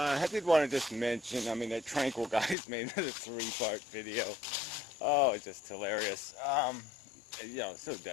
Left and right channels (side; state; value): right; drops out; at 2.6 s